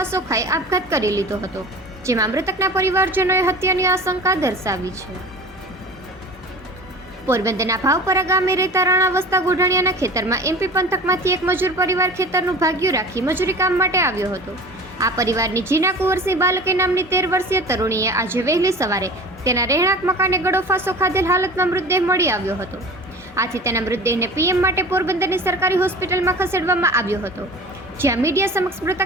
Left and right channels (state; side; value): normal; both; correlation 0.38